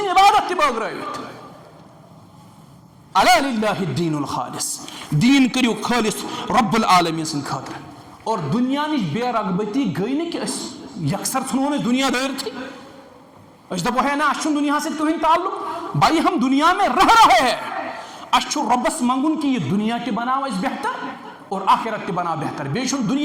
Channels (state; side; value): identical; both; correlation 1.00